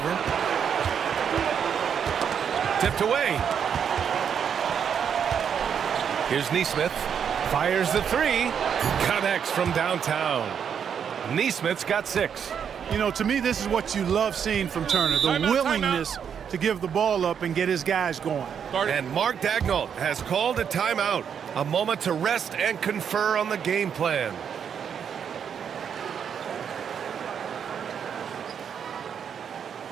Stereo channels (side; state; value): left; quieter; 7.7 dB